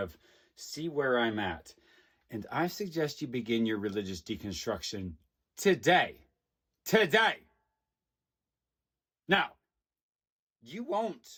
see where I'm at. And I suggest you begin your religious deconstruction today. Today. Now, you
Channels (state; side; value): identical; both; correlation 1.00